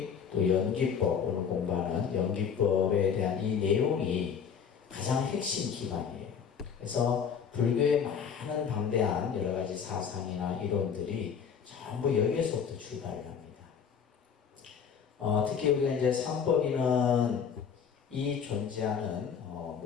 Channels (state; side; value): quieter; right; 7.1 dB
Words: 또 연기법, 오늘 공부하는 연기법에 대한 이 내용이 가장 핵심 기반이에요. 그래서 불교의 많은 방대한 여러 가지 사상이나 이론들이 전부 여기에서부터 출발을 합니다. 특히 우리가 이제 삼법인은 이 존재하는